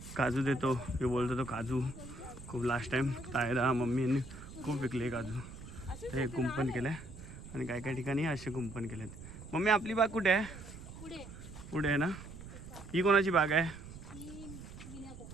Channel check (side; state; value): right; noise; rumble, 14 dB below the sound